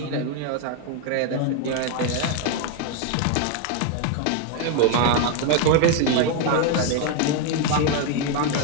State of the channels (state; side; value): different; both; correlation 0.01